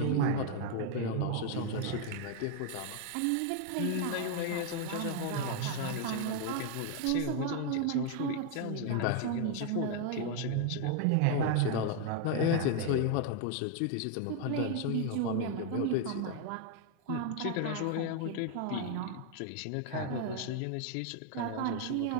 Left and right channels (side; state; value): both; different; correlation 0.00